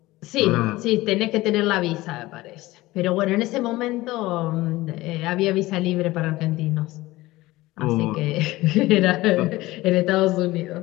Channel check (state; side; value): quieter; right; 18.7 dB